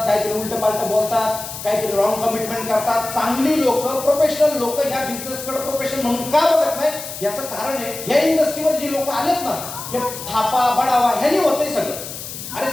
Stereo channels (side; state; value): left; noise; hiss, 10 dB below the sound